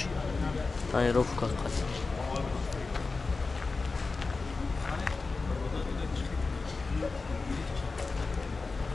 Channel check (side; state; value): right; quieter; 4.0 dB